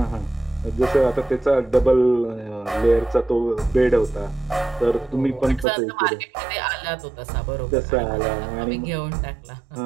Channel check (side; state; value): left; drops out; at 5.7 s